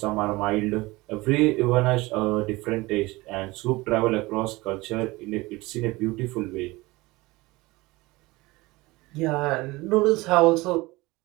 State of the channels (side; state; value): left; quieter; 21.5 dB